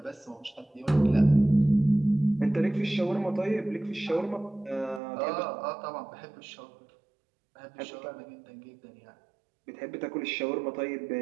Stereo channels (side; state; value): left; drops out; at 5.0 s